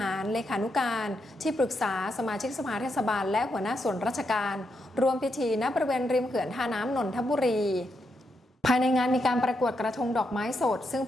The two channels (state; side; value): normal; both; correlation 0.82